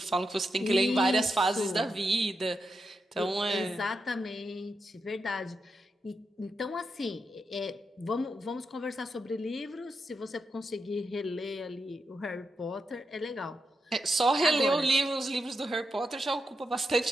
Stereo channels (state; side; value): normal; both; correlation 0.86